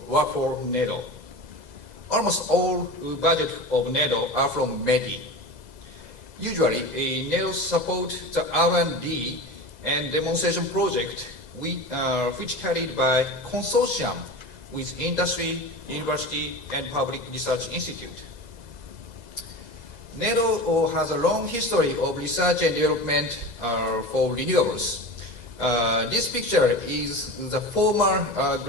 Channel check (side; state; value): left; late; 2.0 ms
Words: work for NEDO. Almost all budget of NEDO are from METI. Usually, NEDO supports the R&D and demonstration project which carried by consortium with industry, university, and public research institute. NEDO has a long history of research and development for renewables. This picture is the former